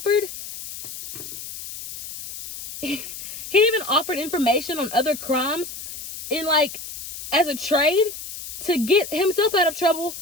information on other crimes in as a trade to get himself out of trouble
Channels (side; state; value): left; noise; hiss, 11 dB below the sound